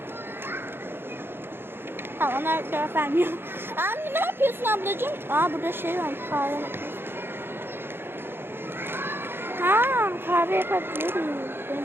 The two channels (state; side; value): late; left; 0.11 ms